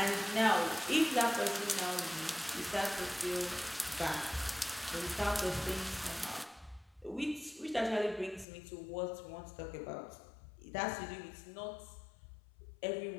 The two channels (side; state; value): right; drops out; at 8.5 s